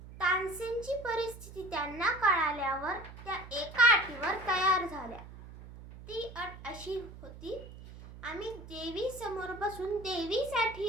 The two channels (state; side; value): noise; right; hum, 15 dB below the sound